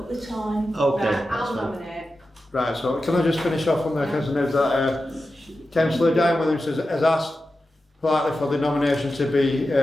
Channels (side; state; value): both; normal; correlation 0.92